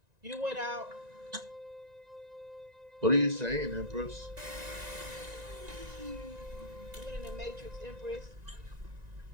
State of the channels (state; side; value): late; left; 1.9 ms